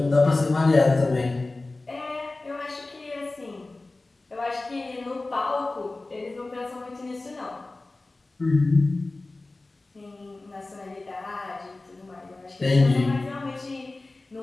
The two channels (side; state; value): right; quieter; 3.1 dB